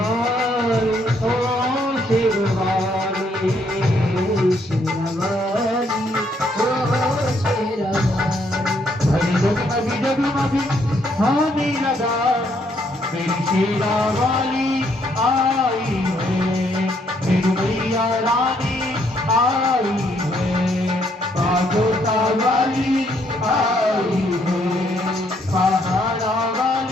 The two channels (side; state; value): both; normal; correlation 0.70